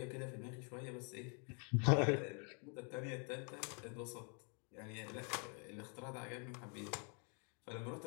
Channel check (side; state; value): right; quieter; 39.1 dB